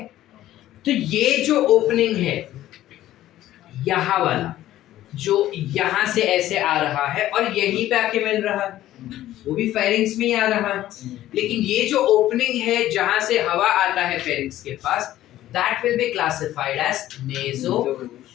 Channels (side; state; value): right; quieter; 13.8 dB